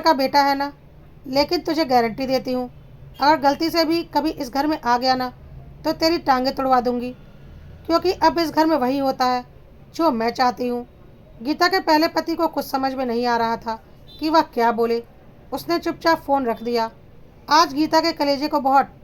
बेटा है ना, लेकिन तुझे गारंटी देती हूँ, अगर गलती से भी कभी इस घर में आ गया ना, तो तेरी टांगें तुड़वा दूंगी, क्योंकि अब इस घर में वही होता है जो मैं चाहती हूँ। गीता के पहले पति को कुछ समझ में नहीं आ रहा था कि वह क्या बोले। उसने चुपचाप फ़ोन रख दिया। आज गीता के कलेजे को बहुत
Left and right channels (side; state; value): both; identical; correlation 1.00